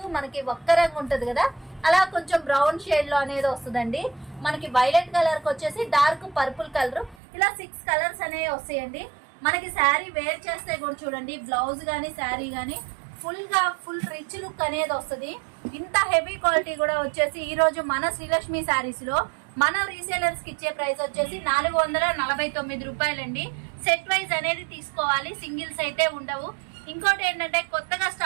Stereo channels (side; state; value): left; drops out; at 7.2 s